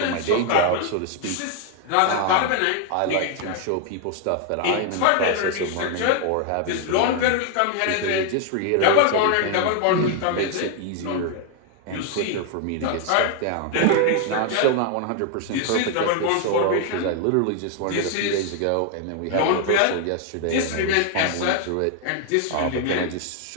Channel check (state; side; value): different; both; correlation 0.00